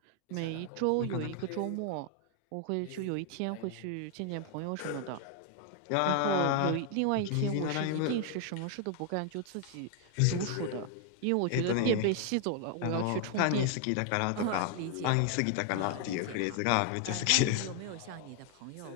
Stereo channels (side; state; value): both; different; correlation 0.00